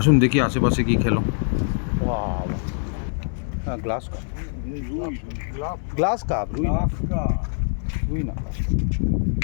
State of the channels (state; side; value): silent; right; digital silence